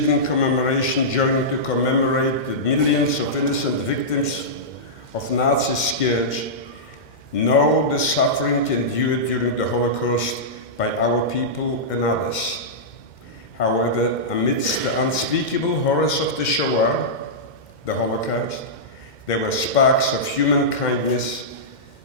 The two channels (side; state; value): right; late; 2.1 ms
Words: commemoration join to commemorate the millions of innocent victims of Nazi scourge, know the suffering endured during the Holocaust by our people and others. However, amidst the unspeakable horrors of the Shoah, the Holocaust, there were sparks of human kindness,